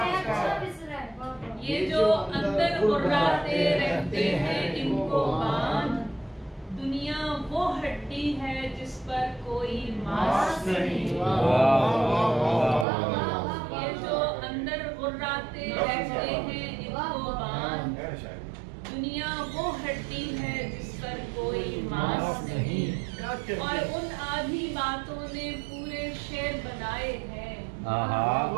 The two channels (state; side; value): drops out; left; at 12.9 s